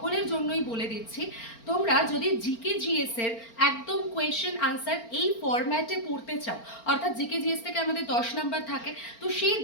জন্যই বলে দিচ্ছি, তোমরা যদি জিকে জিএস এর একদম কোয়েশ্চেন আনসার এই ফরম্যাটে পড়তে চাও, অর্থাৎ জিকে জিএস থেকে আমাদের 10 নাম্বার থাকে, তো সেই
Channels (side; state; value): right; late; 4.4 ms